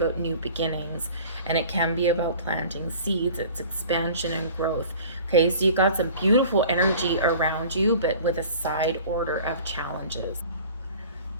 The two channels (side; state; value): both; inverted; correlation -0.45